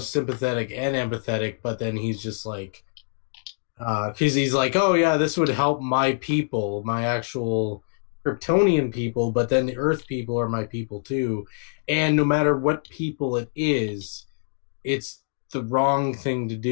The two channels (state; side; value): silent; right; digital silence